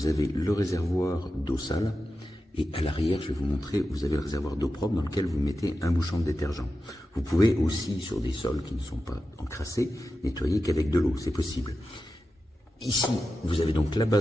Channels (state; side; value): normal; both; correlation 0.91